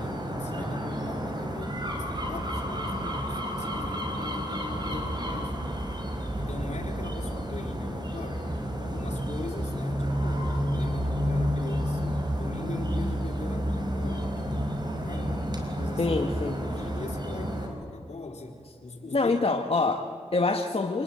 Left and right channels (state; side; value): normal; both; correlation 0.75